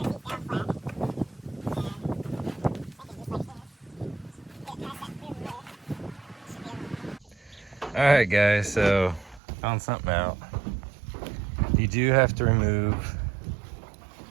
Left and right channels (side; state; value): left; drops out; at 9.4 s